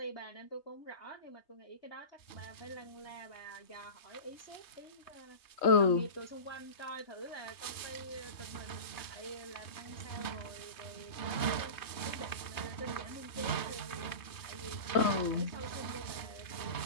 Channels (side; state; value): right; late; 3.2 ms